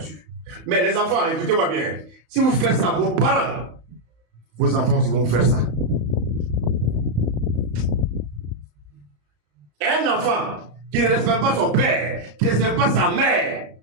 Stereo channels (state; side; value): late; left; 35 ms